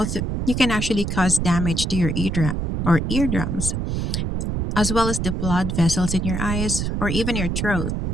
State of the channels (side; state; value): right; noise; rumble, 1 dB below the sound